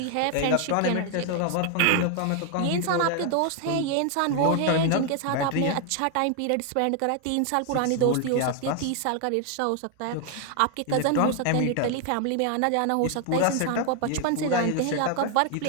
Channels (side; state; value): both; different; correlation 0.00